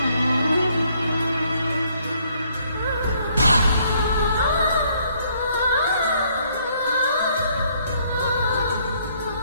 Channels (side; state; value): both; inverted; correlation -0.67